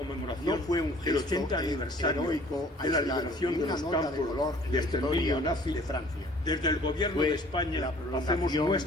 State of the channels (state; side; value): normal; both; correlation 0.53